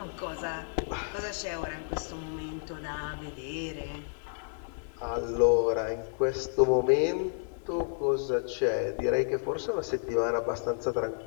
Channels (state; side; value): silent; right; digital silence